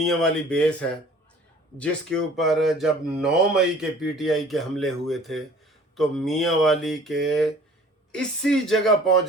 वाली बेस है जिसके ऊपर जब 9 मई के PTI के हमले हुए थे तो मियाँ वाली के इसी जगह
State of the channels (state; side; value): normal; both; correlation 0.50